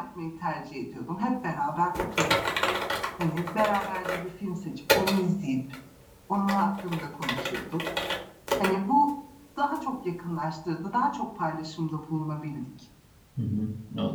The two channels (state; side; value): identical; both; correlation 1.00